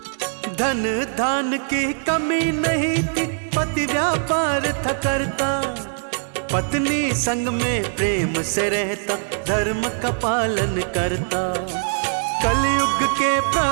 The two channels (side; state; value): left; silent; digital silence